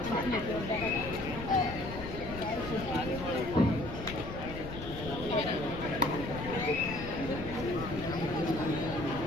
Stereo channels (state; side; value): noise; left; rumble, 10 dB below the sound